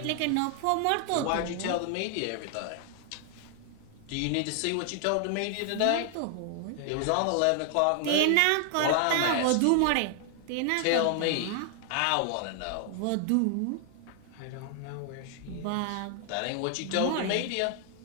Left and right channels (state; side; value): different; both; correlation 0.00